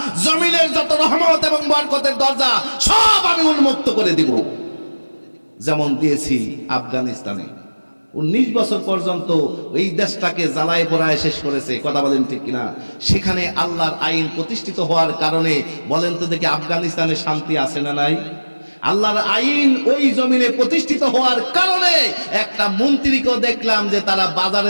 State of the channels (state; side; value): inverted; both; correlation -1.00